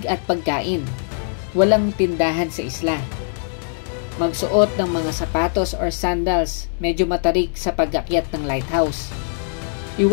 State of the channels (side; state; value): right; silent; digital silence